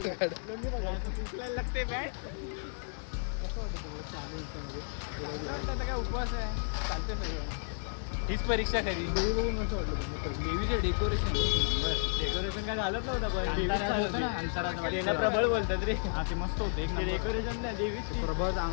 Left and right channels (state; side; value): silent; right; 56 dB below the other